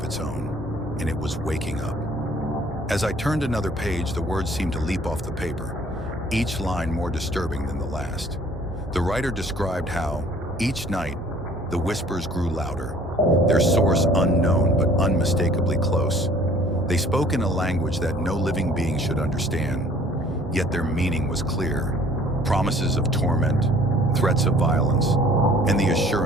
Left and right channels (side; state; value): both; normal; correlation 0.55